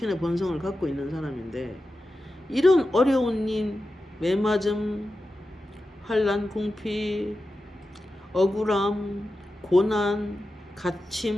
본성을 갖고 있는 사람인데 이런 어려운 일, 매맞음, 환난, 궁핍, 억울함, 고난,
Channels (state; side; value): normal; both; correlation 0.92